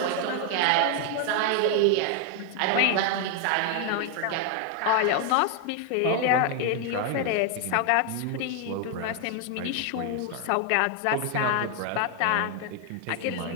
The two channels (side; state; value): both; different; correlation 0.01